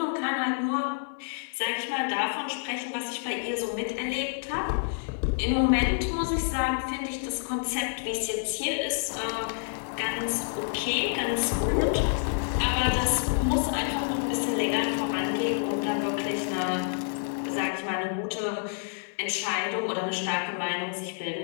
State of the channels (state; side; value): silent; right; 57 dB below the other